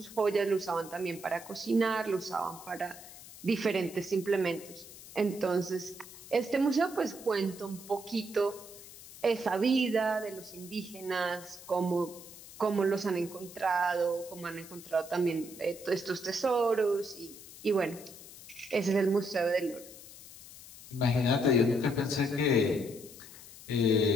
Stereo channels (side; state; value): left; noise; hiss, 17 dB below the sound